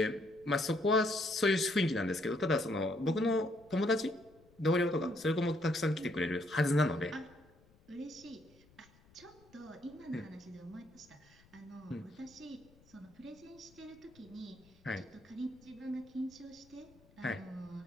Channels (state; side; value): noise; left; rumble, 28 dB below the sound